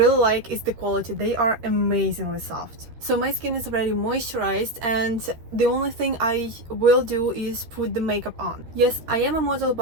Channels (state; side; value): late; left; 13 ms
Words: like is the quality. They are amazingly soft. So my skin is already moisturized and the only thing I will do is put the makeup on. Yes, I am a model,